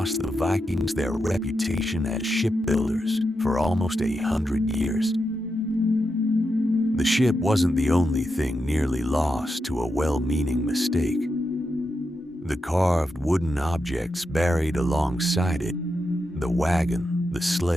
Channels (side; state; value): both; normal; correlation 0.86